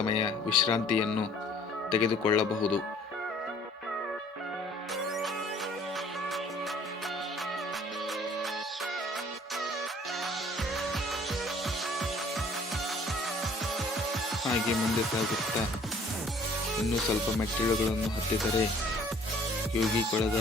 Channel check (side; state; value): both; normal; correlation 0.55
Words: ವಿಶ್ರಾಂತಿಯನ್ನು ತೆಗೆದುಕೊಳ್ಳಬಹುದು. ಹಾಗೆ ಮುಂದೆ ಸಾಗುತ್ತಾ ಇನ್ನೂ ಸ್ವಲ್ಪ ಮೆಟ್ಟಿಲುಗಳನ್ನು ಹತ್ತಿದರೆ ಯೋಗಿಕೊಳದ